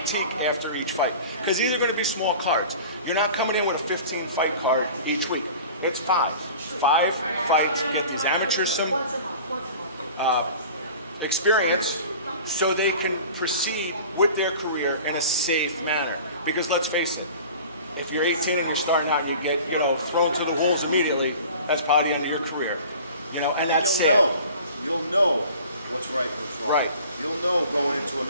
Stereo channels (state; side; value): inverted; both; correlation -0.42